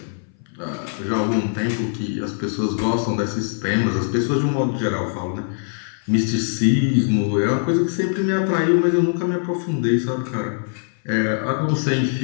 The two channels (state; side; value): silent; right; 59 dB below the other